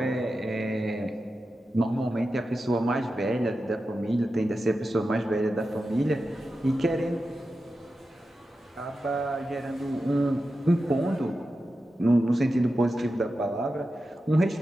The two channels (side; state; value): both; normal; correlation 0.91